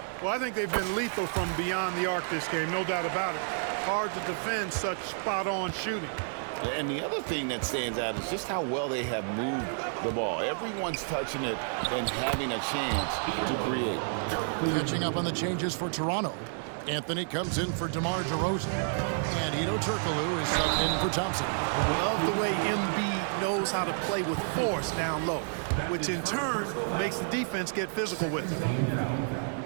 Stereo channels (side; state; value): left; silent; 58 dB below the other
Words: Well, I think they've been lethal from beyond the arc this game, no doubt about it. Hard to defend such spot-on shooting. And the other thing that stands out is just how well they have moved the ball. Everyone's touching it and having a chance to create. Catching up on the changes for Toronto. Anthony comes in for DeMar DeRozan. And Ito Turkoglu is subbed in for Thompson. Love the way Embiid knows how to play with force down low, which in turn makes the defense get physical with him.